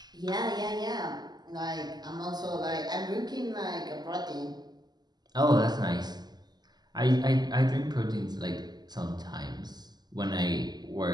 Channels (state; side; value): late; left; 0.20 ms